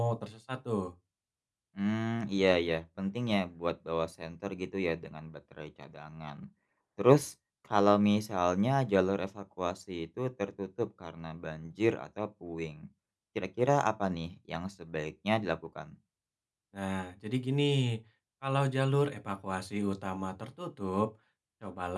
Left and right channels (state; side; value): identical; both; correlation 1.00